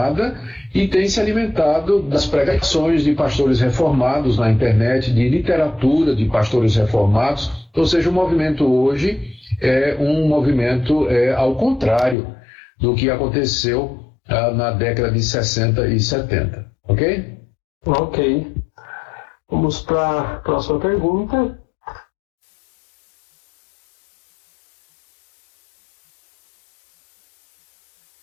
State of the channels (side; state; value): right; drops out; at 12.2 s